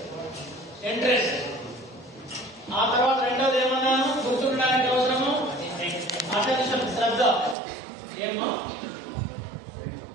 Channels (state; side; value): drops out; left; at 7.6 s